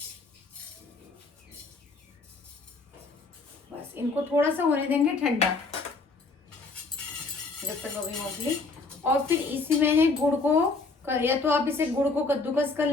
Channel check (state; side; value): quieter; right; 3.8 dB